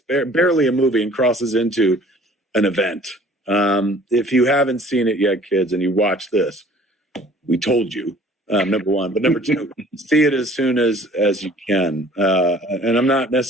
barely a movie and crosses into an event. If you haven't seen it yet, kids, and you watch this, we told you, number one. But number 2, see it as soon as you can. And I'm not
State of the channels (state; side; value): normal; both; correlation 0.52